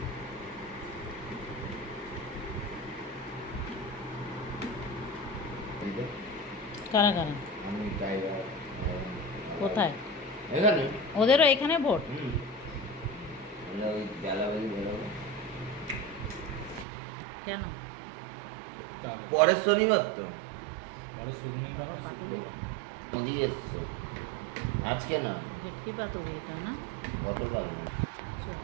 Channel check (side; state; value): left; drops out; at 16.9 s